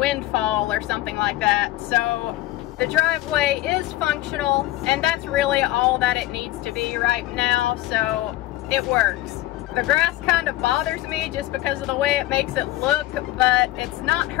or something like that. So the driveway is functional, and that's really all that it needs to be right now, so it works. The grass kind of bothers me just because of the way it makes it look, but it's not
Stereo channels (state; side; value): quieter; right; 16.5 dB